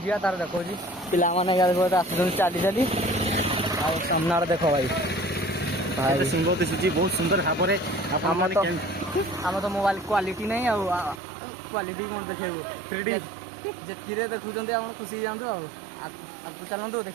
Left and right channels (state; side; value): drops out; left; at 11.2 s